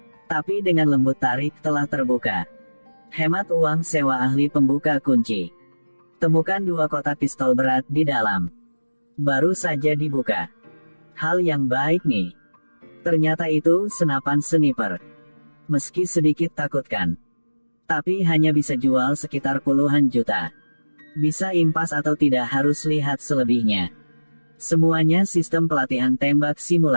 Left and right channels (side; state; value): both; inverted; correlation -1.00